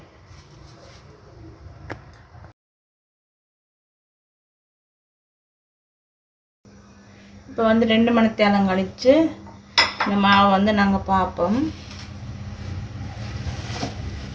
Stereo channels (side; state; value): both; identical; correlation 1.00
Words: இப்போ வந்து 2 மணித்தியாலம் கழித்து இந்த மாவை வந்து நாங்கள் பார்ப்போம்.